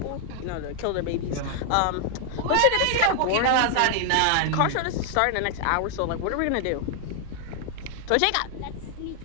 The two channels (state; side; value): different; both; correlation 0.00